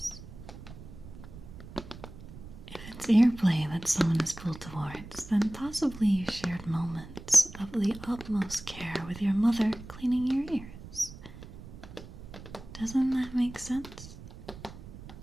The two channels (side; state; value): right; noise; rumble, 15 dB below the sound